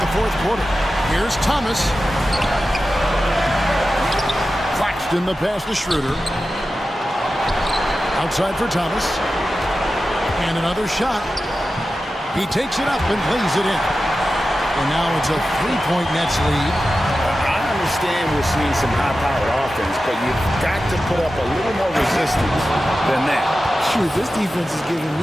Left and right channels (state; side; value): normal; both; correlation 0.93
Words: fourth quarter. Here's Thomas. Claxton the pass to Schroeder. Outside for Thomas. And another shot. He takes it up and plays it in. And now it's a 3-point Nets lead. I understand we're seeing some high-powered offense, but you've got to put up a little more resistance than that. Shoot, this defense is giving